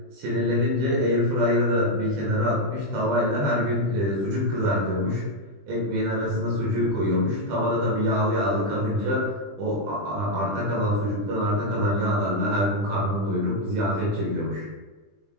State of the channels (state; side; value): late; left; 20 ms